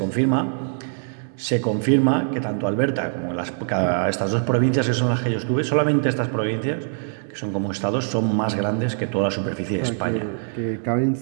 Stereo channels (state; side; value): silent; left; 60 dB below the other